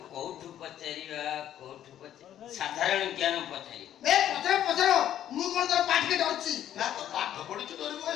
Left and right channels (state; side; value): quieter; right; 11.1 dB